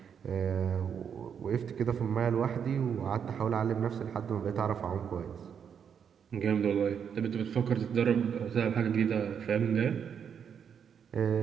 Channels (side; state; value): left; quieter; 7.6 dB